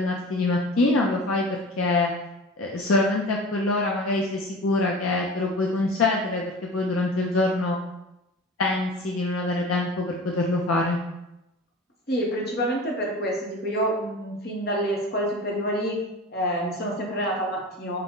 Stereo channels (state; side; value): normal; both; correlation 0.36